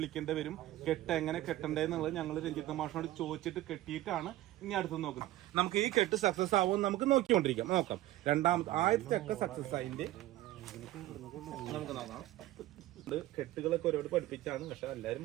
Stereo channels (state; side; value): quieter; left; 15.4 dB